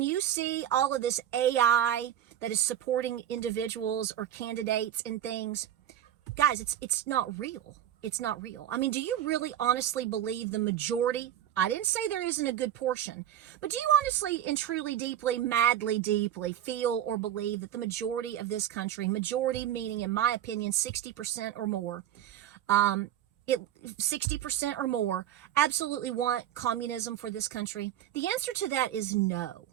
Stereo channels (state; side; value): quieter; left; 11.1 dB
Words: you see all of this AI that is supporting individuals or candidates and things, guys, it's not real. It's not real. I mean, do you really honestly believe the majority? I didn't say there isn't a good portion, but do you honestly and truly, deeply, madly, deeply feel or believe that the majority of this country, majority meaning, in my opinion, 60% or more, 60% or more, absolutely want communism for this country? The answer to that is no.